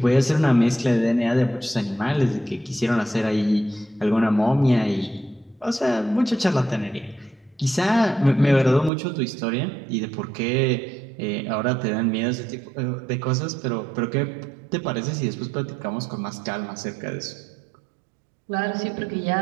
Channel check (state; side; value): drops out; left; at 8.9 s